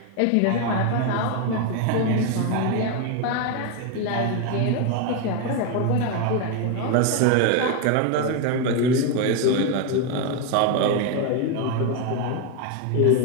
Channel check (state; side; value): different; both; correlation 0.01